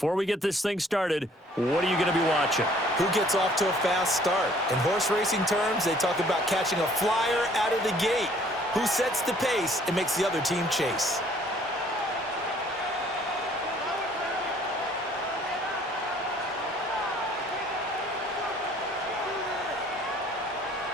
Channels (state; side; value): normal; both; correlation 0.58